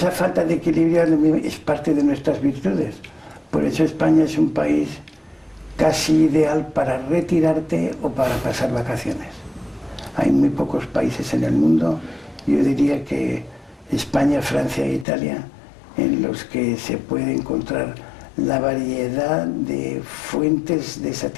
falta de equilibrio es parte de nuestras virtudes. Por eso España es un país casi ideal para retirarte o para pasar vacaciones. Hay muy pocos países en el mundo, yo diría que España, Francia e Italia, en los que se puede encontrar la variedad de fuentes de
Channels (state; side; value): drops out; right; at 15.1 s